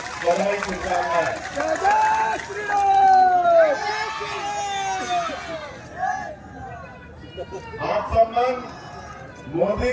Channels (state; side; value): identical; both; correlation 1.00